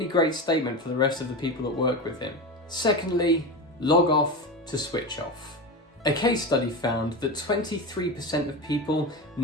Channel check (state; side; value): normal; both; correlation 0.23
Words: great statement for the rest of the people that work with him. Secondly, log off to switch off. A case study found that 23% of people